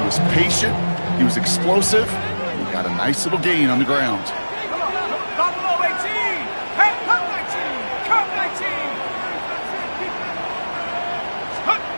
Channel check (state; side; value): inverted; both; correlation -1.00